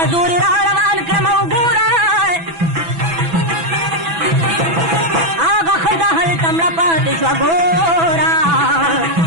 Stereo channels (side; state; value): left; late; 6.0 ms